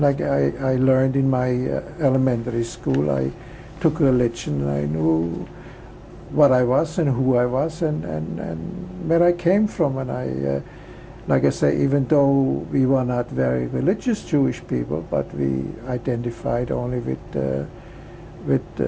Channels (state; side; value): identical; both; correlation 1.00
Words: I learned in my elementary school, I took religion, and I knew what I was and who I was and where I came from. And I, like I say, even though we were not very religious Jewish people, but we identified only with